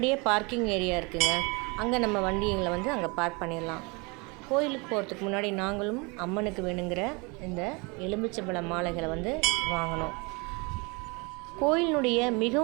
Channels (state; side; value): quieter; left; 28.4 dB